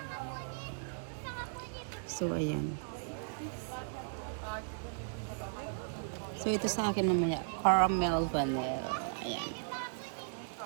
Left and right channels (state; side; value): silent; left; digital silence